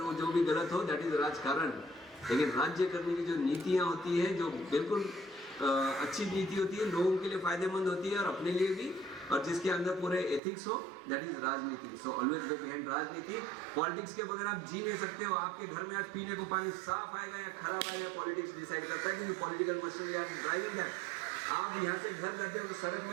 वो जो भी गलत हो, दैट इज राजकारण। लेकिन राज्य करने की जो नीतियां होती है, जो बिल्कुल अच्छी नीति होती है, लोगों के लिए फायदेमंद होती है और अपने लिए भी, और जिसके अंदर पूरे एथिक्स हो, दैट इज राजनीति। सो ऑलवेज गो बिहाइंड राजनीति। पॉलिटिक्स के बगैर आप जी नहीं सकते हो। आपके घर में आज पीने को पानी साफ आएगा या खराब आएगा, पॉलिटिक्स डिसाइड करता है, क्योंकि political machinery are driving that. आप यहाँ से घर जाते हो तो सड़क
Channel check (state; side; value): drops out; left; at 10.4 s